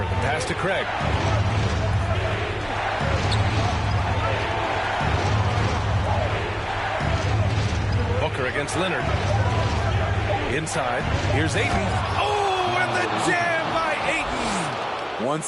pass to Craig. Booker against Leonard. Inside. Here's Ayton. Oh, and the jam by Ayton. One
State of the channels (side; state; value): both; identical; correlation 1.00